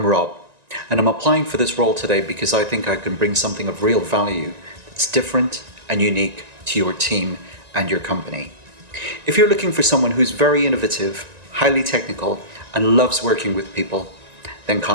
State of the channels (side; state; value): left; late; 1.9 ms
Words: I'm Rob, and I'm applying for this role today because I think I can bring something of real value that's different and unique to your team and your company. If you're looking for someone who's very innovative, highly technical, and loves working with people, then